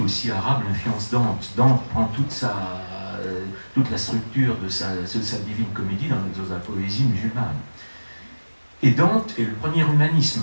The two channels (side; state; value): both; inverted; correlation -1.00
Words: arabe influence Dante. Dante prend toute la structure de sa divine comédie dans la poésie musulmane. Et Dante est le premier